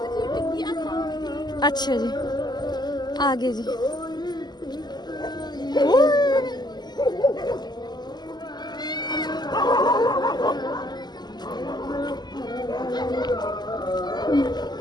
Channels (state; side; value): late; right; 0.21 ms